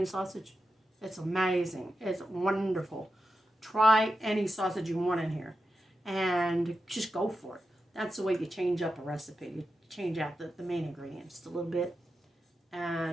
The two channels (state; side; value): normal; both; correlation 0.90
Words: sausage. It's amazing. It's wonderful. Try any sausage you want in here and just go for it. That's the way you change up a recipe. You change out the main ingredients a little bit.